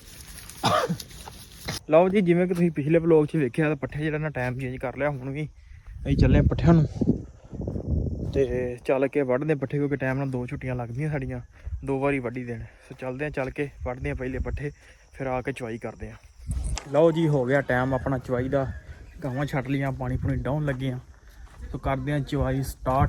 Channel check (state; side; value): identical; both; correlation 1.00